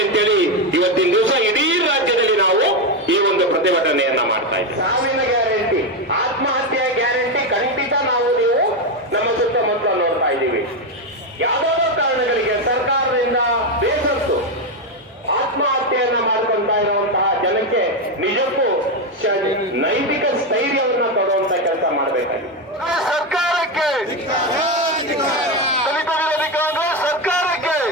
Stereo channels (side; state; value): both; normal; correlation 0.09